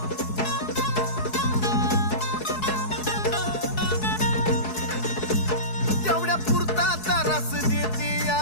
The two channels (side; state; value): right; late; 4.7 ms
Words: तेवढ्या पुरता तारास देती या,